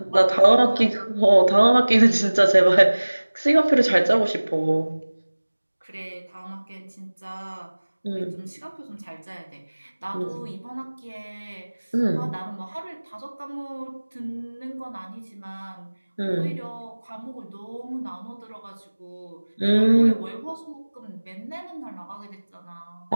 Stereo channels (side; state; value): both; inverted; correlation -1.00